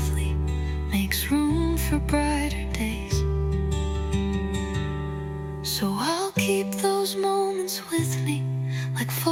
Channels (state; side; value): identical; both; correlation 1.00